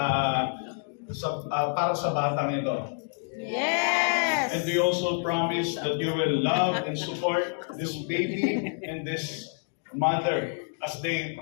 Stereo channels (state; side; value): silent; right; 59 dB below the other